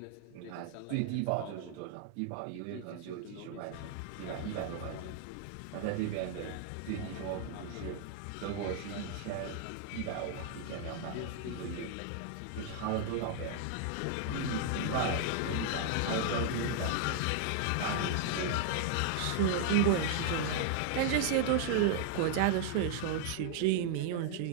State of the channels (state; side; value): different; both; correlation 0.00